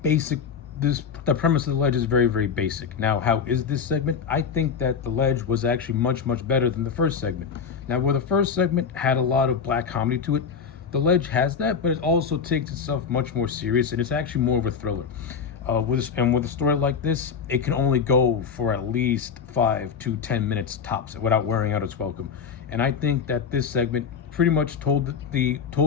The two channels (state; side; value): quieter; right; 6.3 dB